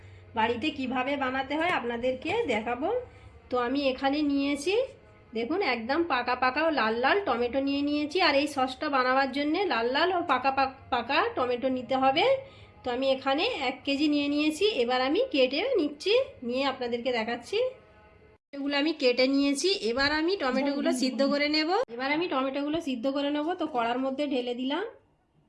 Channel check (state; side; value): identical; both; correlation 1.00